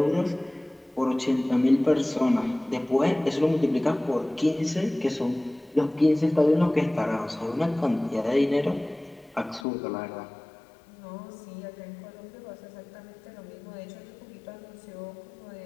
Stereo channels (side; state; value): right; drops out; at 9.7 s